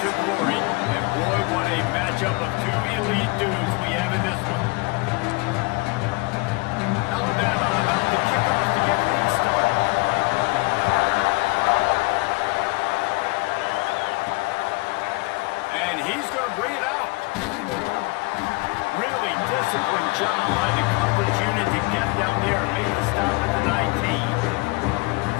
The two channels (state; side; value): quieter; right; 27.0 dB